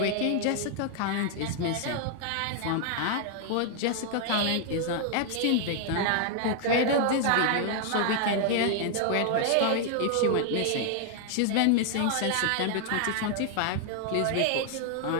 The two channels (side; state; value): both; different; correlation 0.00